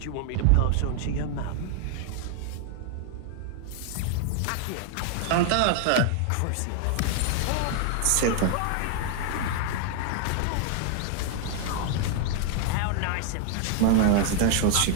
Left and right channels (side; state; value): both; different; correlation 0.00